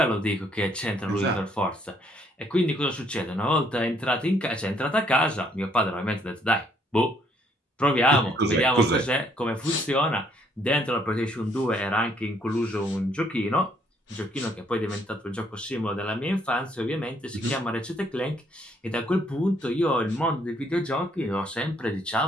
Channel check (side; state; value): both; normal; correlation 0.68